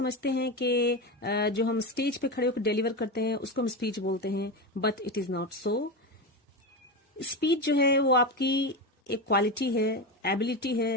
हैं कि जो हम स्टेज पे खड़े होकर डिलीवर करते हैं उसको हम स्पीच बोलते हैं, but it is not so. Speech जो है वो आपकी एक क्वालिटी है, एबिलिटी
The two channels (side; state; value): both; normal; correlation 0.18